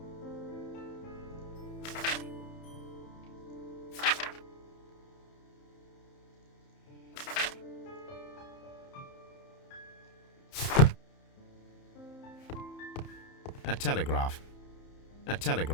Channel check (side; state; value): right; late; 30 ms